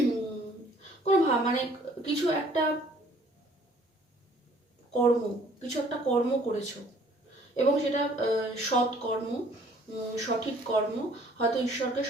কোনো মানে কিছু একটা কর্ম করেছো, এবং সেটা সৎ কর্ম, সঠিক কর্ম, হয়তো ঈশ্বরকে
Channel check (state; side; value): normal; both; correlation 0.58